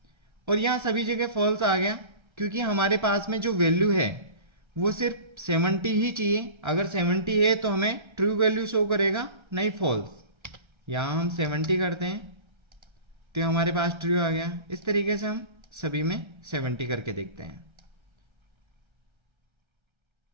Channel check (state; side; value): late; left; 1.3 ms